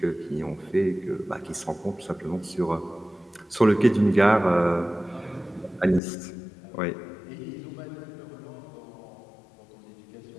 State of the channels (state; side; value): drops out; right; at 6.0 s